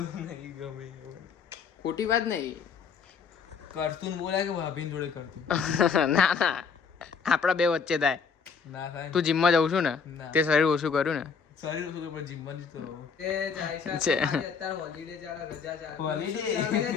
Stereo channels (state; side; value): quieter; right; 5.9 dB